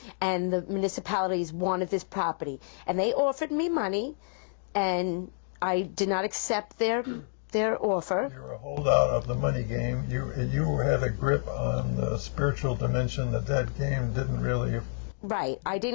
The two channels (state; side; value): silent; right; digital silence